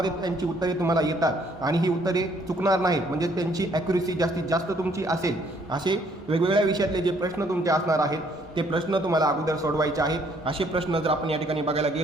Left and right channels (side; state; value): both; normal; correlation 0.65